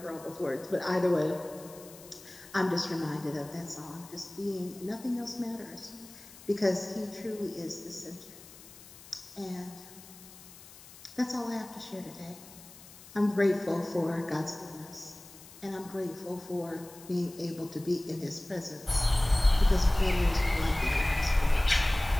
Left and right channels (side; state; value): left; noise; hiss, 19 dB below the sound